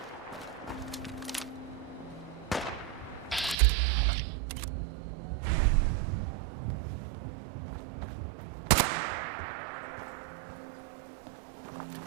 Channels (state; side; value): drops out; left; at 3.6 s